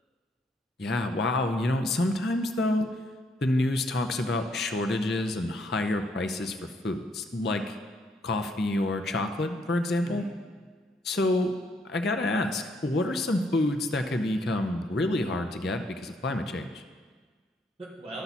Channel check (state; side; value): normal; both; correlation 0.71